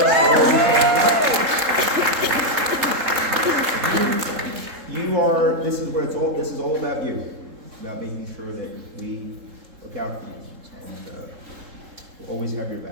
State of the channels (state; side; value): late; left; 3.7 ms